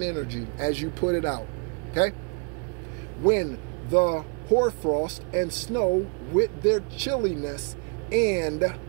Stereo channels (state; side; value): quieter; left; 38.6 dB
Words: energy as you put it out, okay? When the hoarfrost and snow with their chilliness and